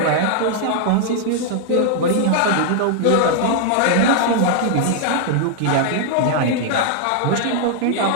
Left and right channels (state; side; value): different; both; correlation -0.01